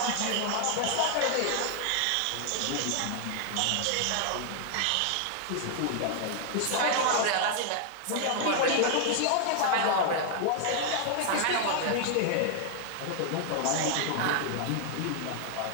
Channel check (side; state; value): both; different; correlation 0.00